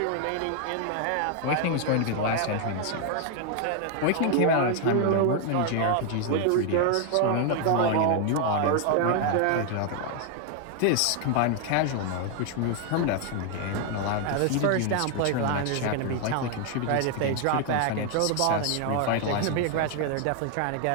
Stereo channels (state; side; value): different; both; correlation 0.00